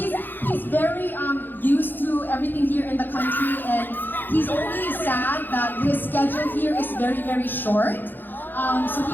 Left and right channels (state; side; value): late; right; 0.092 ms